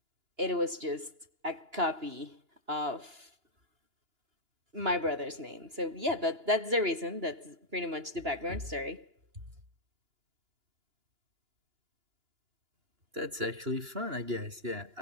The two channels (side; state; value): left; late; 2.9 ms